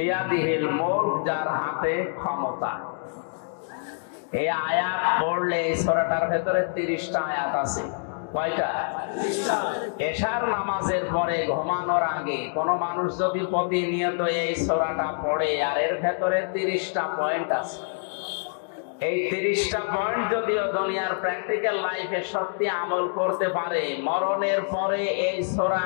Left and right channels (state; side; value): silent; right; digital silence